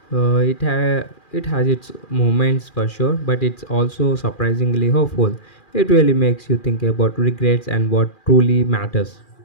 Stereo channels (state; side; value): late; right; 2.4 ms